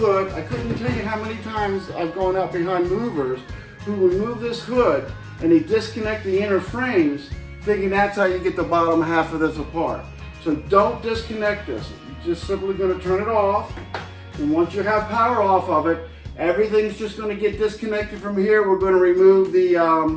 I couldn't tell you how many times I've gone out behind movers who remove this hood and they disconnect the inner frames, thinking that's how you get the bottom half of this apart. So don't disconnect this. You're just simply going to turn it off, and once you have power off of it, everything's just going to get disconnected from here. We're going to remove the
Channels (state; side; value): identical; both; correlation 1.00